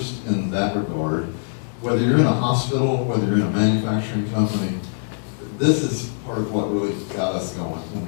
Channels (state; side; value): silent; right; digital silence